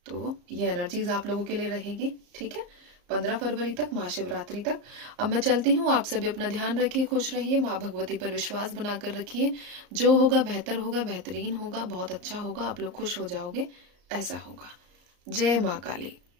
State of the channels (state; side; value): late; left; 34 ms